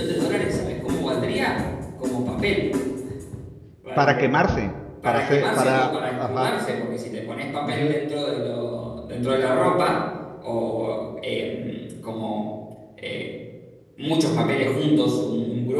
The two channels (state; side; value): identical; both; correlation 1.00